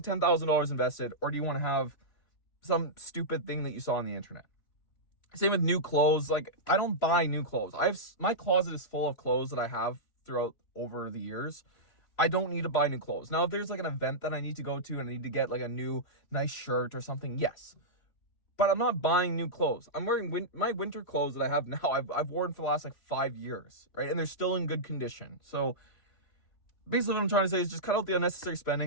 invested, or do you want to have some stupid thing that you saw on the internet? Same with new clothes. Like, I don't buy new clothes. My closet is full of clothes that I have throughout over the years, I don't need to buy new clothes. Now, if there's like an event that I need to go to and I need to get like a new nice shirt or something, yes. But I'm not buying new clothes. I'm wearing my winter clothes that I have now. I've worn for the last like 5 years, right? And they're still in good condition. So basically what I'm trying to say is just cut out the unnecessary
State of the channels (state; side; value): late; right; 3.0 ms